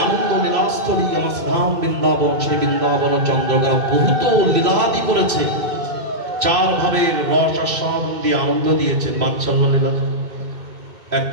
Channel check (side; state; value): left; late; 2.6 ms